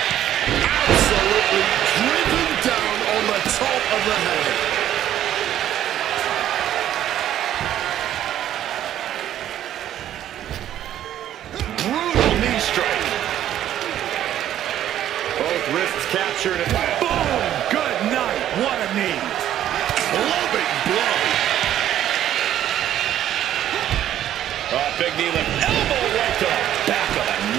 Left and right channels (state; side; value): quieter; left; 11.6 dB